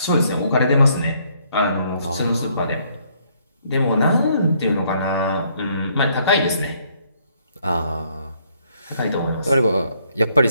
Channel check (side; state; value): both; inverted; correlation -0.68